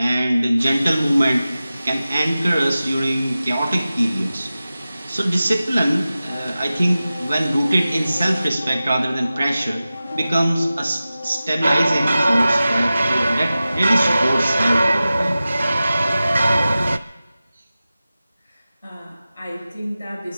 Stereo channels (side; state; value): both; inverted; correlation -0.95